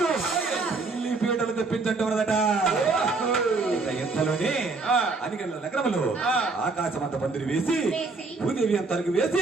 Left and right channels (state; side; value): quieter; left; 3.8 dB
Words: పెళ్లి పీటలు తెప్పించటదట. ఎంతలోనే అనిగల నగరంలో ఆకాశమంత పందిరి వేసి భూదేవి అంతలకు